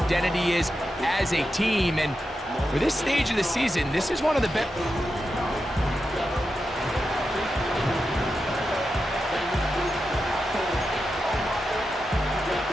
is as a team. And for this stage of the season, this is one of the best.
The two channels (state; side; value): normal; both; correlation 0.89